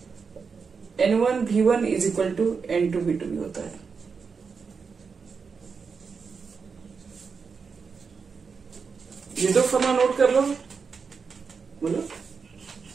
N1 V1 is equal to N2 V2 भी होता है। ये दो फॉर्मूला नोट कर लो, बोलो।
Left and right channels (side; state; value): left; quieter; 5.5 dB